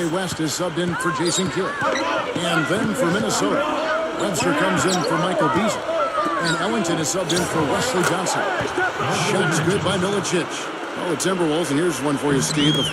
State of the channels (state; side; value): identical; both; correlation 1.00